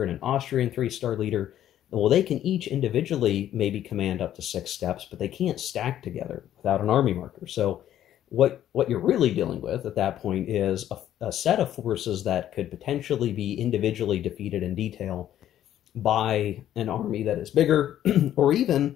and an Austrian 3-star leader. Well, they can each individually maybe command up to 6 steps, but they can't stack together without an army marker. So what you're really dealing with at that point is a set of forces that could potentially be individually defeated in detail by an army that is bigger, or even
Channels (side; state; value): right; quieter; 11.6 dB